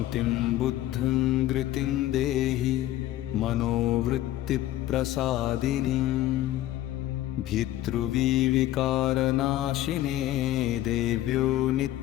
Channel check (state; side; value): quieter; right; 14.3 dB